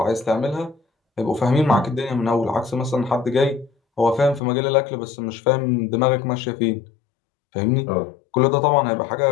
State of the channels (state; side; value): drops out; right; at 4.4 s